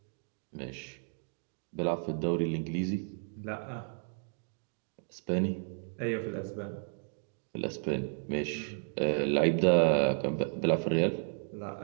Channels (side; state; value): left; silent; 56 dB below the other